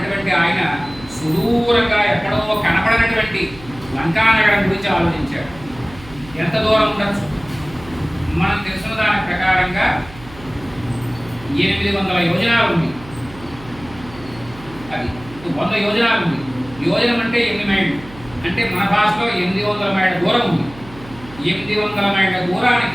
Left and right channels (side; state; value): right; noise; hum, 18 dB below the sound